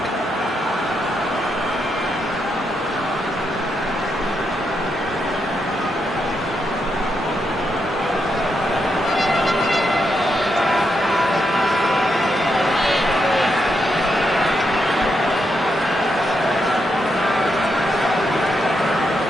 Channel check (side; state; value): both; normal; correlation 0.81